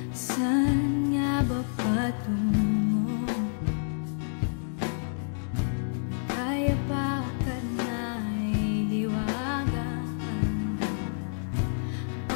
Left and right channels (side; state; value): right; silent; digital silence